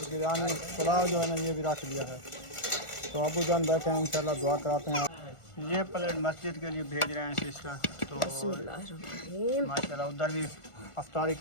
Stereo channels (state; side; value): late; right; 1.4 ms